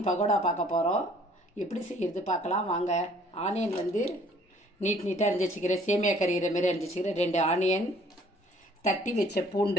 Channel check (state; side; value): normal; both; correlation 0.57